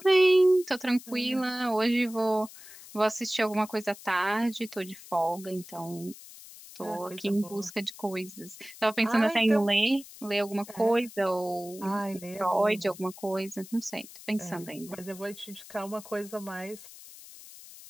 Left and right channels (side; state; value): left; noise; hiss, 17 dB below the sound